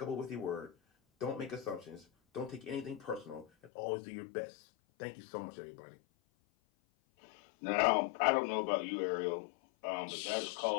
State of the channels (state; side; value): drops out; right; at 3.7 s